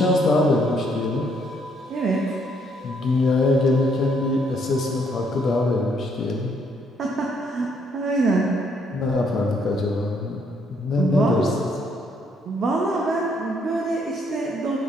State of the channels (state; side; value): normal; both; correlation 0.70